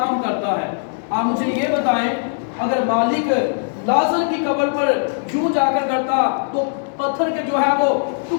करता है। आप मुझे ये बताएं अगर मालिक लाजर की कब्र पर यूं जाकर करता तो पत्थर के जो है वो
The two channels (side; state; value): right; silent; digital silence